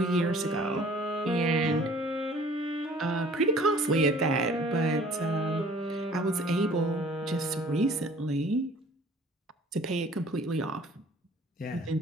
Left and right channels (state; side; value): normal; both; correlation 0.52